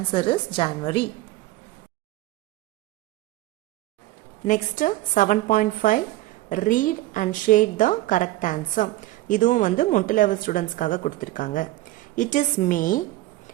is January. Next 7.5 read and shade the correct answer. இதுவும் மொட்டு லெவல் ஸ்டூடெண்ட்ஸ்க்காக கொடுத்துருக்காங்க. It is May,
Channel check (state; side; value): quieter; left; 17.2 dB